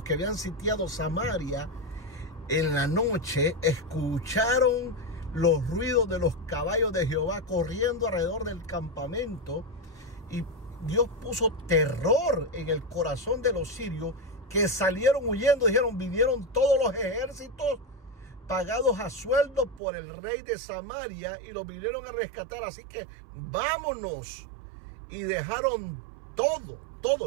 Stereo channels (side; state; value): left; drops out; at 19.8 s